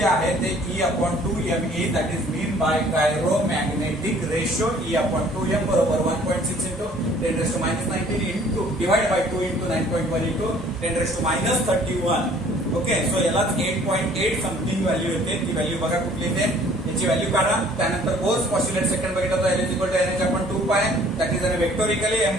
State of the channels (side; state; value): both; normal; correlation 0.55